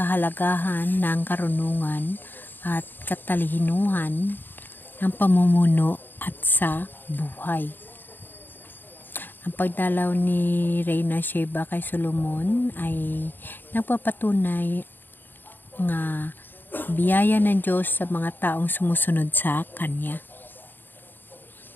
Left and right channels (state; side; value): late; right; 0.093 ms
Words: ng karunungan at katalinuhan ng pamumuno at sa buhay. Ang pagdalaw ni Reyna Sheba kay Solomon ay nagpapatunay nga biyaya ng Diyos sa mga taong sumusunod sa Kanya.